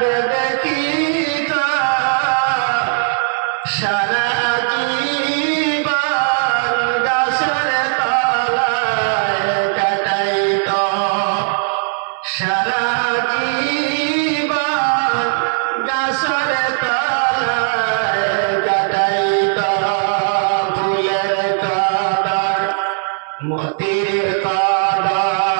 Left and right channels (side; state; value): left; silent; 68 dB below the other